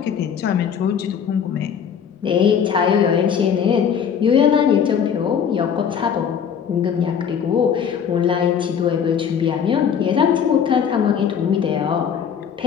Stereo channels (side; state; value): right; quieter; 7.6 dB